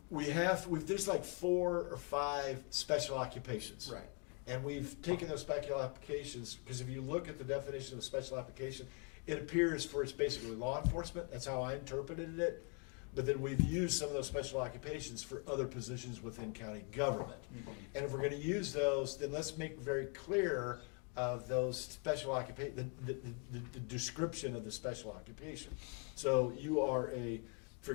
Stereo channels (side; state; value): right; quieter; 35.1 dB